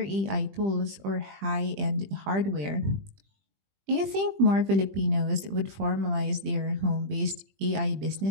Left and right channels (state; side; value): late; left; 20 ms